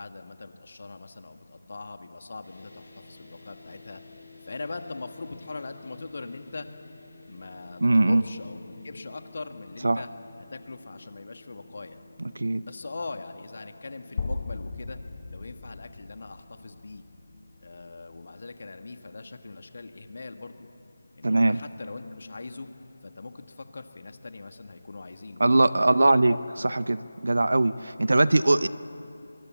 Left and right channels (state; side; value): inverted; both; correlation -0.98